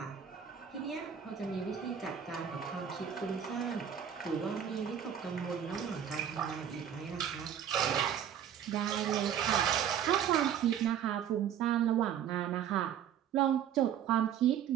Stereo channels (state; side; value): quieter; left; 9.1 dB